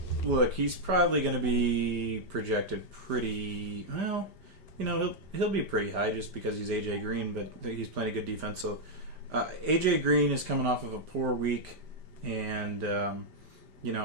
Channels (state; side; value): late; left; 5.1 ms